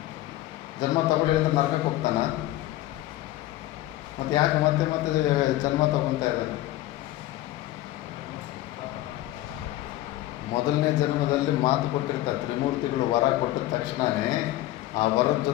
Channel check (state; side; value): quieter; right; 15.6 dB